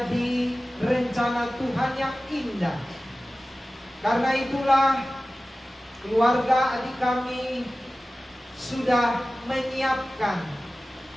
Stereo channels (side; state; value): both; normal; correlation 0.96